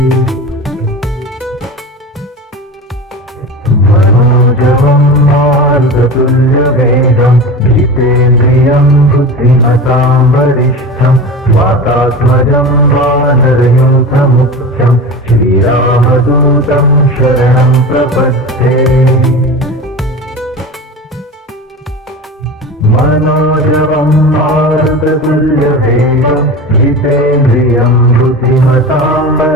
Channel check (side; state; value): both; normal; correlation 0.30